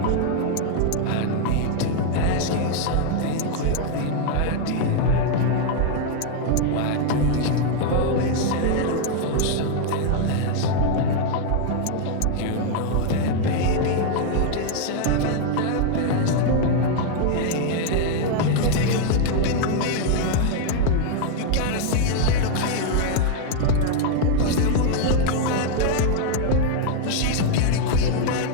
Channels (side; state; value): both; different; correlation 0.00